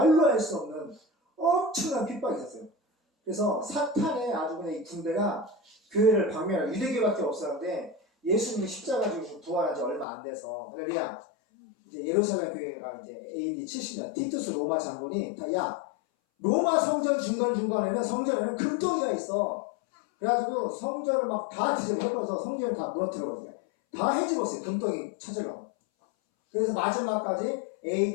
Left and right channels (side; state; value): right; drops out; at 10.1 s